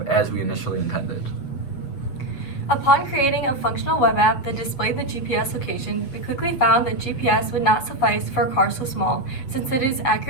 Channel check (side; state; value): right; late; 8.0 ms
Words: as we initially intended. Upon creating a functional web app that displayed the GPS location, we quickly found that GPS would not suffice for a car so small, since it is